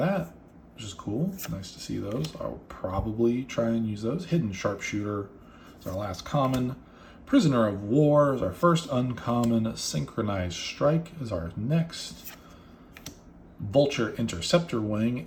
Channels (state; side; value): identical; both; correlation 1.00